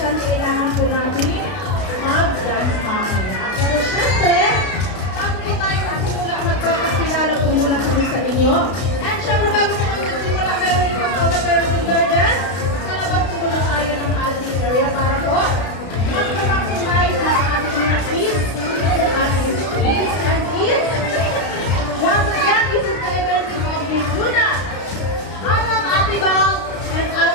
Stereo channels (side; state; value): right; late; 32 ms